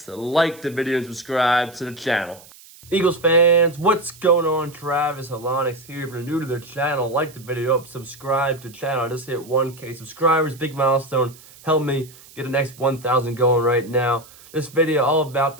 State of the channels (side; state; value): right; noise; hiss, 22 dB below the sound